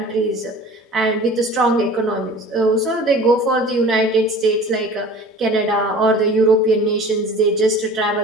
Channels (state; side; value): normal; both; correlation 0.43